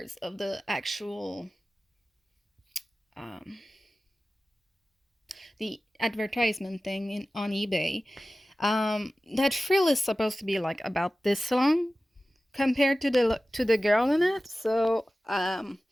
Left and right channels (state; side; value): normal; both; correlation 0.96